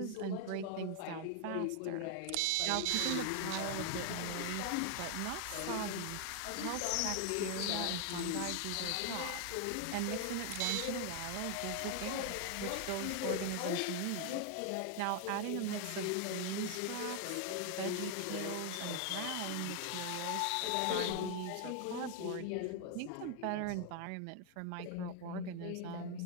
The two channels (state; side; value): different; both; correlation 0.00